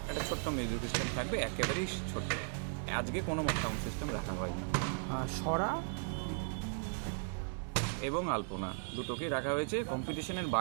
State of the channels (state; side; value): silent; left; 53 dB below the other